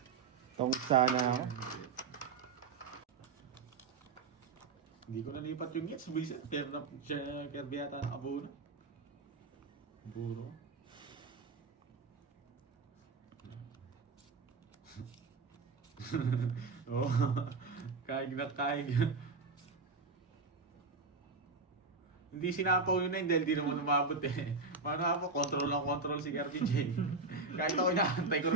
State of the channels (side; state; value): left; quieter; 4.2 dB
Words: Tong sana ako. Hindi ko nalipat yung gets. Buisit. Pero na siya Kirby yata nakabuo na. Buro. Oh, kaig na kaig. Hindi sinapaw yun na dahil di naman umabot eh. Paano nga po, control si Kirby J. Kahit ako inaantay ko